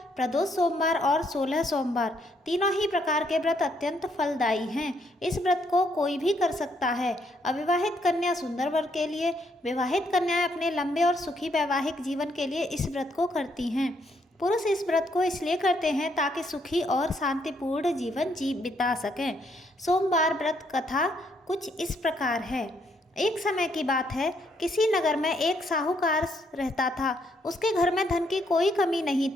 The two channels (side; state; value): both; normal; correlation 0.72